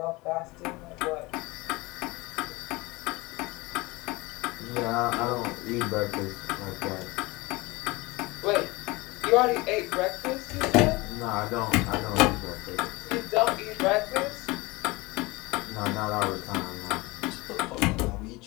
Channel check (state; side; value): quieter; right; 23.1 dB